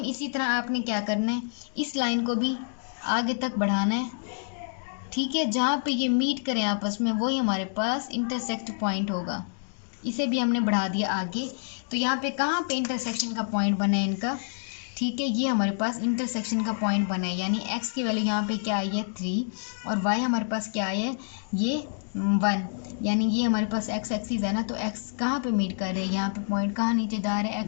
इसी तरह आपने क्या करना है, इस लाइन को भी आगे तक बढ़ाना है, ठीक है, जहाँ पे ये मीट करें आपस में वही हमारे पास इंटरसेक्ट पॉइंट होगा। इसे भी हमने बढ़ा दिया आगे, तो यहाँ पे कहाँ पे इंटरसेक्शन का पॉइंट बना है इनका, ठीक है, ये हमारे पास इंटरसेक्शन का पॉइंट बना है, यानी x की वैल्यू यहाँ पे क्या आई है 3 और y हमारे पास क्या आई है ये 1, यानी ये हमारे पास x एक्सिस है ना, तो x कहाँ पे मीट कर रहे हैं, यहाँ पे पॉइंट कहाँ नीचे जा रहा है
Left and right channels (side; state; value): right; silent; digital silence